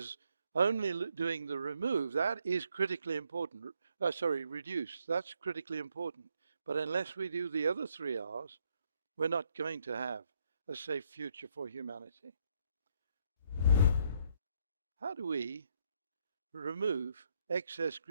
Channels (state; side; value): inverted; both; correlation -0.73